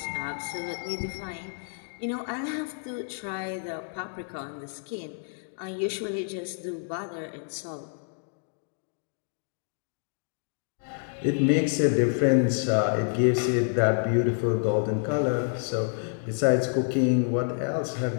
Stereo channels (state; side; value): silent; right; 59 dB below the other